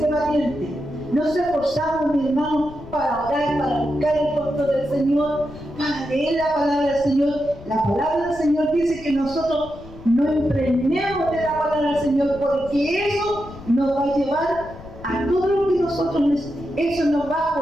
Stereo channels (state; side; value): noise; left; rumble, 17 dB below the sound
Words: valiente. Nos esforzamos, mi hermano, para orar, para buscar el rostro del Señor, para leer la palabra del Señor. La palabra del Señor dice que nosotros no impregnemos de la palabra del Señor, porque eso nos va a llevar a todo lo que nosotros necesitamos. Eso nos va a